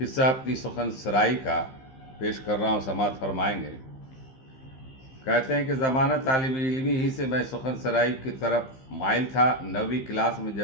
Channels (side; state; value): right; late; 15 ms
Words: اپنی سخن سرائی کا پیش کر رہا ہوں، سماعت فرمائیں گے۔ کہتے ہیں کہ زمانہ طالب علمی ہی سے میں سخن سرائی کی طرف مائل تھا۔ 9ویں کلاس میں